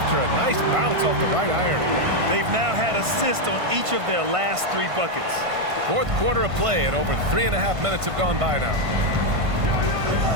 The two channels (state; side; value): late; left; 1.5 ms